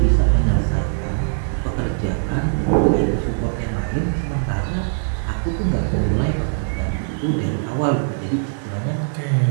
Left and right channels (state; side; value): silent; left; 65 dB below the other